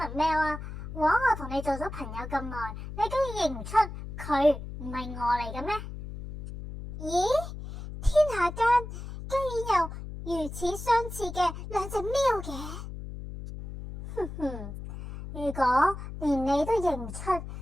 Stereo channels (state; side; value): noise; left; hum, 9 dB below the sound